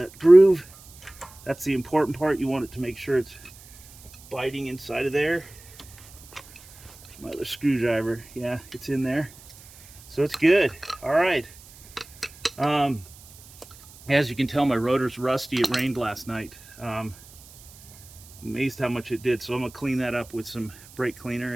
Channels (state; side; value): noise; right; hiss, 22 dB below the sound